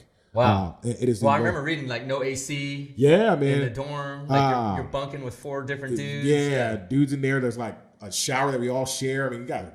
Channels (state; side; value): identical; both; correlation 1.00